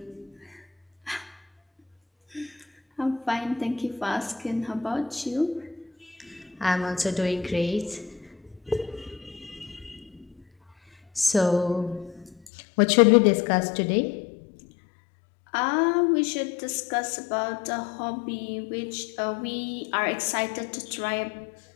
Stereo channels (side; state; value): right; drops out; at 12.5 s